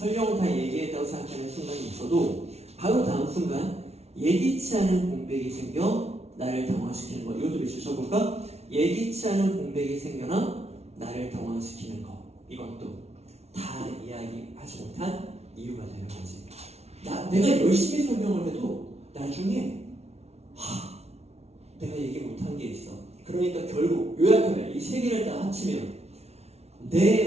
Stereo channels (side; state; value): left; late; 0.31 ms